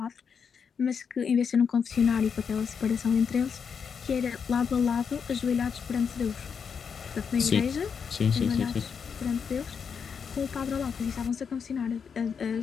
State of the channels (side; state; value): right; quieter; 6.5 dB